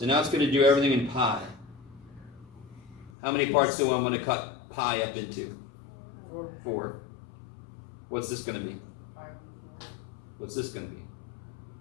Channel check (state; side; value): drops out; right; at 3.1 s